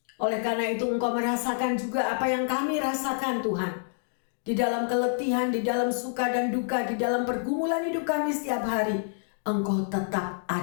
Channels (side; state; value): right; silent; digital silence